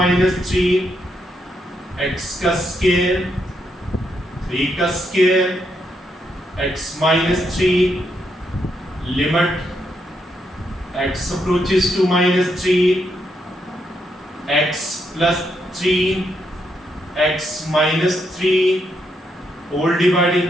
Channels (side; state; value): both; normal; correlation 0.79